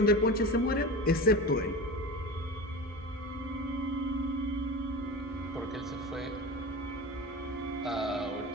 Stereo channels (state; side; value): normal; both; correlation 0.30